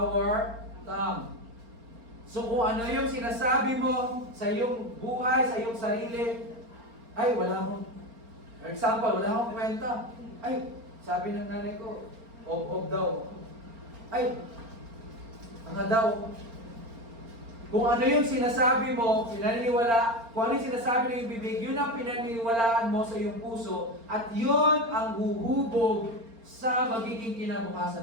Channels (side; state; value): left; late; 4.4 ms